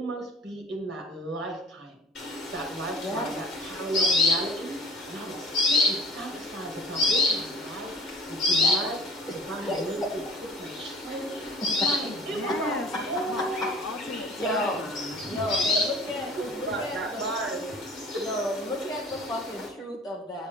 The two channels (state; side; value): normal; both; correlation 0.45